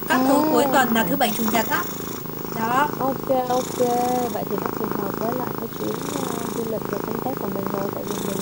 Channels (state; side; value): noise; right; rumble, 19 dB below the sound